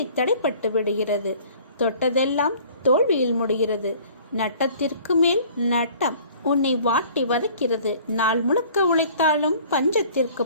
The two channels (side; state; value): both; inverted; correlation -0.51